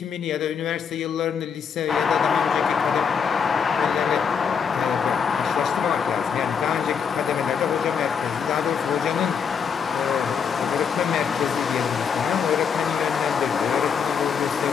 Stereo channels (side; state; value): right; quieter; 6.7 dB